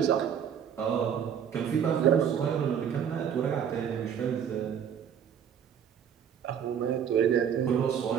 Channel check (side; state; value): left; quieter; 8.3 dB